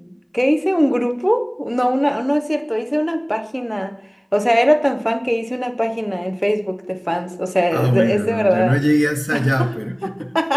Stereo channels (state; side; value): identical; both; correlation 1.00